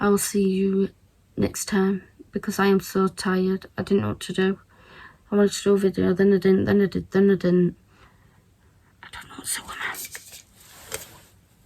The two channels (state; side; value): identical; both; correlation 1.00